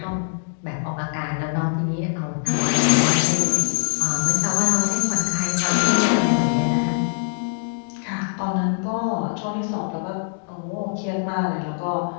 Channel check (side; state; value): right; silent; digital silence